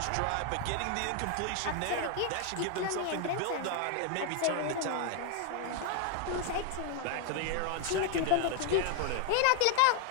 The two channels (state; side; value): different; both; correlation 0.00